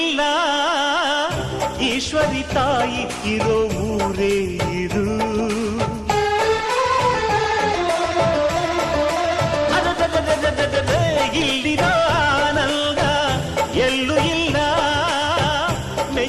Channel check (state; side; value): identical; both; correlation 1.00